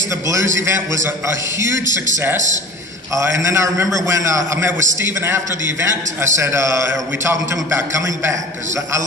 the Blues event was a huge success. And then I remember when I met with Stephen after the event, I said, are we talking to him about coming back? Because I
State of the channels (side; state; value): both; normal; correlation 0.39